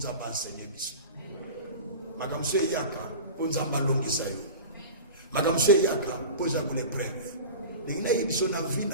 enseigner Biso. Makamso Yaka, pour Nzamba longisa yo. Makamso Yaka, pour Nzamba l'épreuve. Il y a une vie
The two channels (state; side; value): inverted; both; correlation -0.32